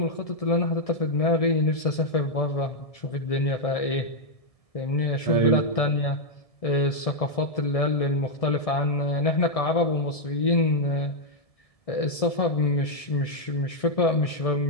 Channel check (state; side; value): late; right; 1.7 ms